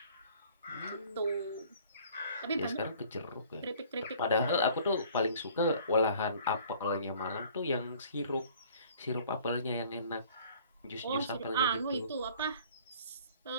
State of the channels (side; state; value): both; inverted; correlation -0.53